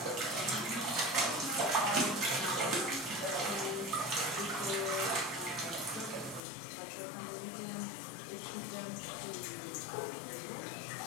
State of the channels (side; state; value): right; drops out; at 6.4 s